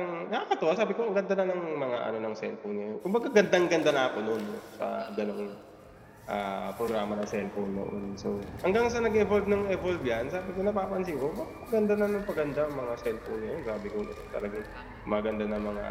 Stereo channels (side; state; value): both; identical; correlation 1.00